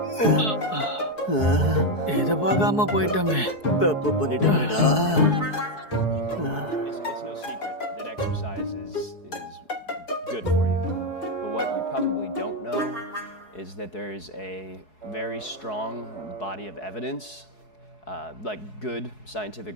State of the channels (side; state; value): right; late; 4.7 ms